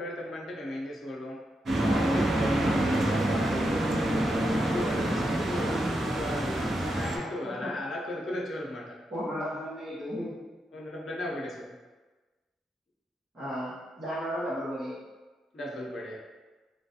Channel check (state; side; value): normal; both; correlation 0.84